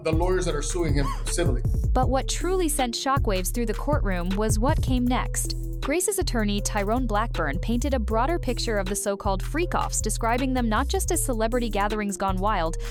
lawyers that are suing him civilly. But what truly sent shockwaves through the courtroom was what came next. Grace's attorney, Tyrone Blackburn, painted a broader picture of the so-called FreakOFFS, describing them not just as celebrity gatherings gone wild,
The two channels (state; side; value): identical; both; correlation 1.00